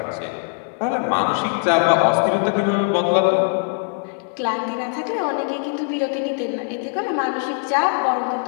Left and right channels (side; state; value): right; silent; 58 dB below the other